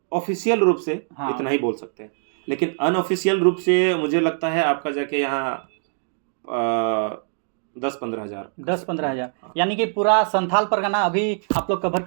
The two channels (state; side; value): silent; left; digital silence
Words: ऑफिशियल रूप से हाँ। इतना ही बोल सकते हैं, लेकिन अनऑफिशियल रूप से मुझे लगता है आपका जाके यहाँ 10-15 हजार 10-15 हज़ार, यानी कि पूरा संथाल परगना अभी आप लोग कवर